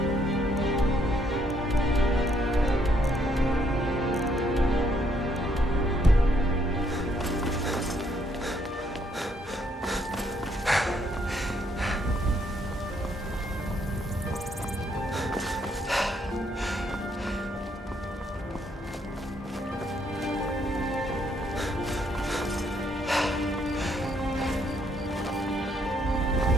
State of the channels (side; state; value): both; normal; correlation 0.71